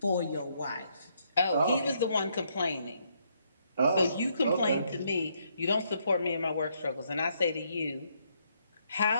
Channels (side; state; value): both; inverted; correlation -0.73